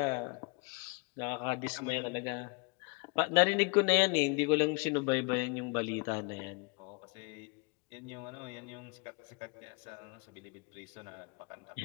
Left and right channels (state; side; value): quieter; right; 31.0 dB